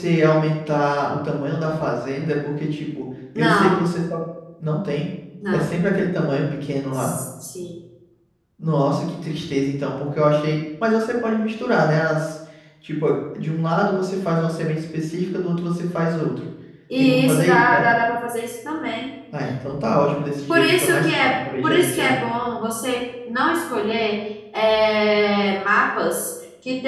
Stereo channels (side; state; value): both; identical; correlation 1.00